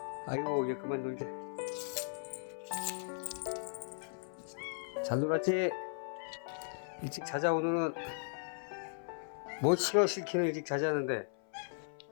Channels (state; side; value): silent; right; 53 dB below the other